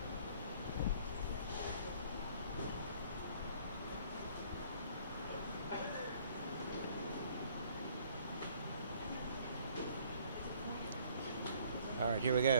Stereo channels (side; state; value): both; inverted; correlation -0.58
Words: All right, here we